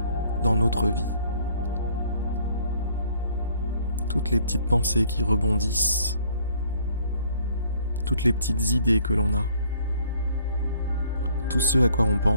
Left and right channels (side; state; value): both; inverted; correlation -0.61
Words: dans notre vie. Toutes les petites pensées qui rebondissent, toutes les petites idées que l'on a, tout ce à quoi on